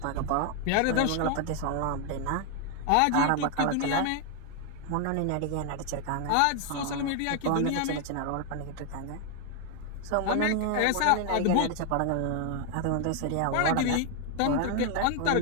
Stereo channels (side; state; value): both; different; correlation 0.00